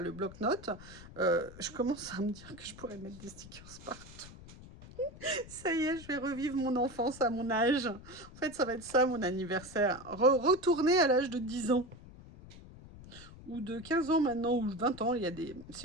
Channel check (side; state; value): left; noise; rumble, 17 dB below the sound